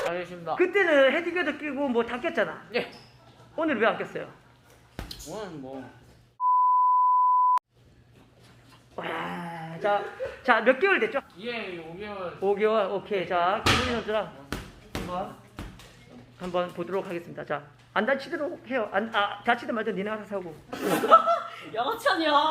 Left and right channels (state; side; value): identical; both; correlation 1.00